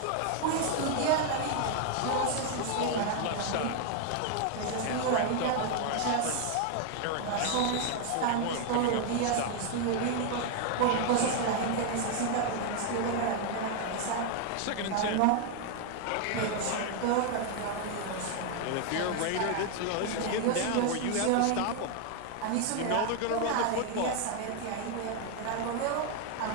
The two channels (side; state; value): both; different; correlation 0.00